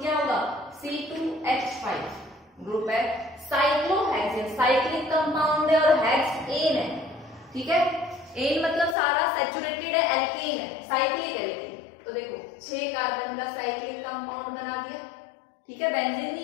क्या होगा, C2H5 ग्रुप है, साइक्लोहेक्सेन साइक्लिक कंपाउंड है और हेक्स एन है, ठीक है, एन मतलब सारा सैचुरेटेड है, एल्केन है, साइक्लिक है लेकिन, तो देखो 6 कार्बन का साइक्लिक कंपाउंड बना दिया, ठीक है, बेंजीन नहीं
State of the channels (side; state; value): right; drops out; at 9.0 s